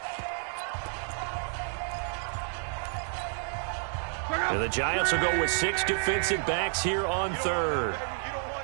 And the Giants will go with 6 defensive backs here on 3rd. You don't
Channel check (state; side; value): silent; left; 58 dB below the other